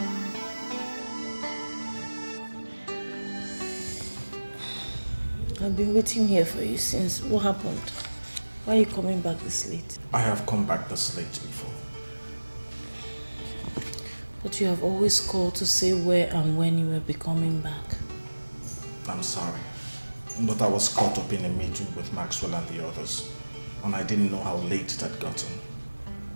I've been waiting here for you since. What happened? Why are you coming back this late? I have come back this late before. But you have always called to say where and when you will be coming back. I'm sorry, but I was caught up in a meeting with Maxwell and the others, and I didn't know how late it had gotten.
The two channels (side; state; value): both; inverted; correlation -1.00